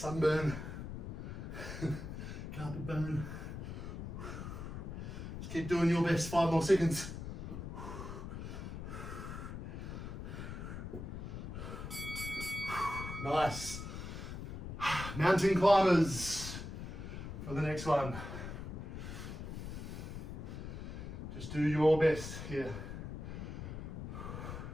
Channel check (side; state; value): left; noise; rumble, 7 dB below the sound